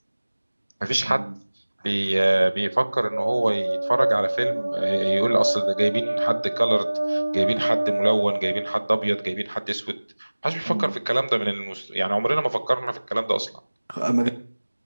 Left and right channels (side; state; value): both; inverted; correlation -1.00